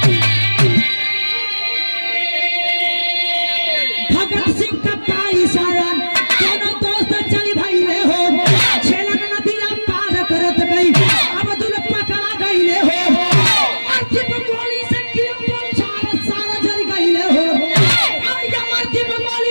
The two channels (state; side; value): inverted; both; correlation -1.00